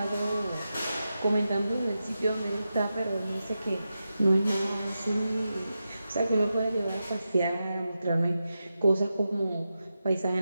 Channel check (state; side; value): inverted; both; correlation -0.90